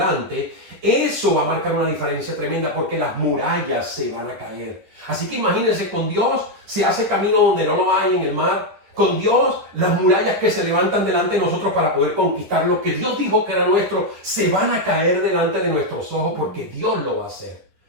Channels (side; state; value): left; late; 10 ms